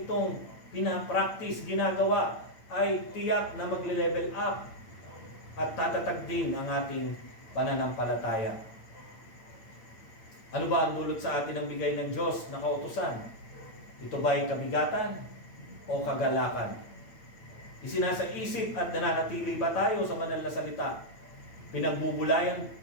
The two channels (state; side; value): late; right; 8.9 ms